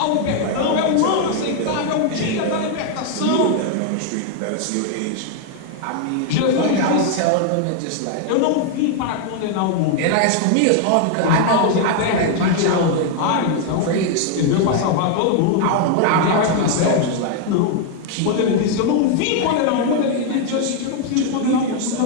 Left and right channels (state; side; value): different; both; correlation 0.00